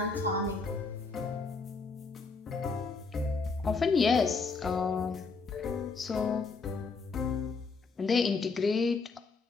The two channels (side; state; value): right; quieter; 4.4 dB